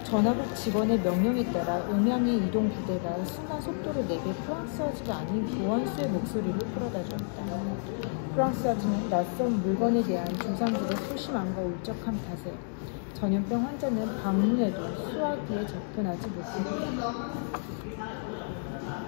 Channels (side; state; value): right; silent; digital silence